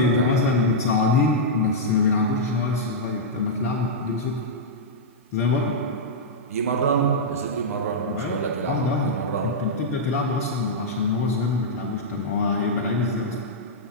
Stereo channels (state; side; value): normal; both; correlation -0.09